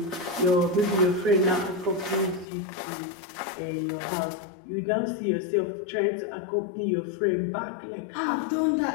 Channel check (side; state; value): right; drops out; at 2.5 s